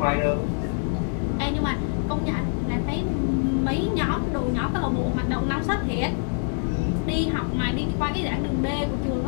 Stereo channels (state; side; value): silent; right; 59 dB below the other